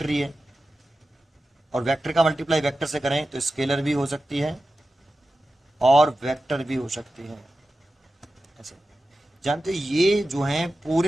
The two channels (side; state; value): both; normal; correlation 0.93